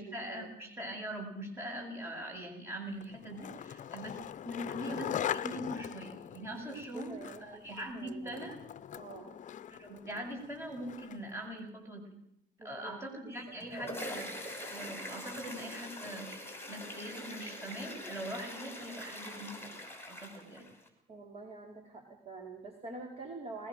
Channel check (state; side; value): normal; both; correlation 0.30